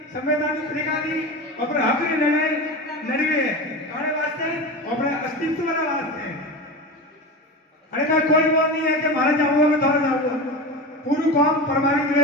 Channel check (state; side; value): normal; both; correlation 0.25